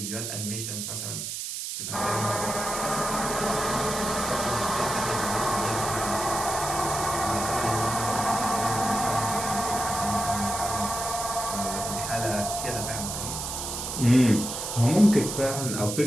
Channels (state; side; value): noise; right; hiss, 5 dB below the sound